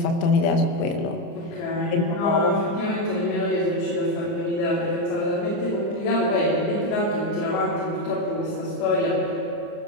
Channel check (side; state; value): right; late; 29 ms